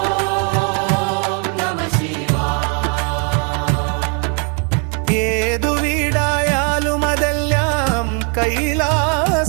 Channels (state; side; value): quieter; left; 39.2 dB